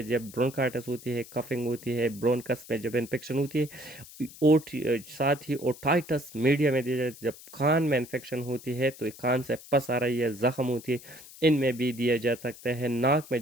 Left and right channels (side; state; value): left; noise; hiss, 18 dB below the sound